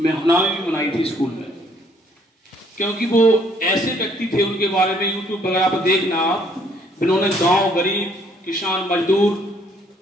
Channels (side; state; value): both; normal; correlation 0.64